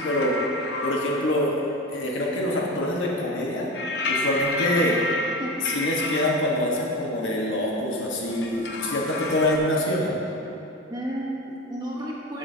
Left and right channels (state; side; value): normal; both; correlation 0.25